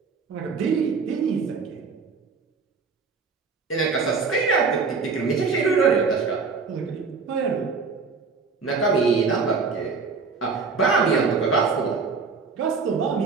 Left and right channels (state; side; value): quieter; left; 4.8 dB